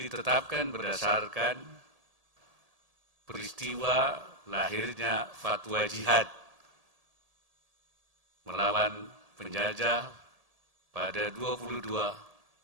ditetapkan berdasarkan peristiwa lahirnya fatwa jihad melawan penjajah pada 22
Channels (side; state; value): left; late; 1.8 ms